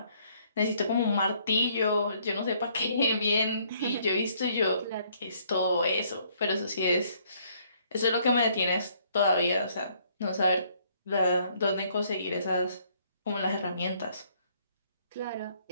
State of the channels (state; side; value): inverted; both; correlation -0.65